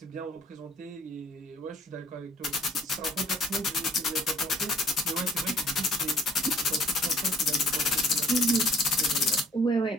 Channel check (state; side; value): normal; both; correlation 0.59